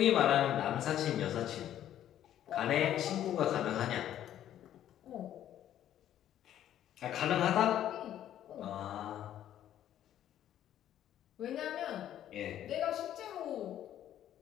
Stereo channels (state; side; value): quieter; right; 11.4 dB